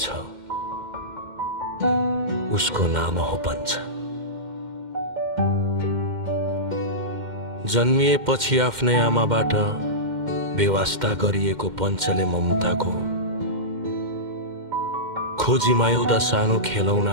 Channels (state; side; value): late; left; 2.1 ms